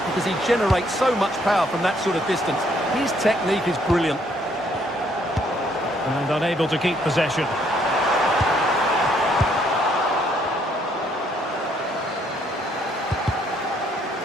because he generates so much power from that sort of distance. His technique is brilliant. And unable to keep possession.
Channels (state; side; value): normal; both; correlation 0.68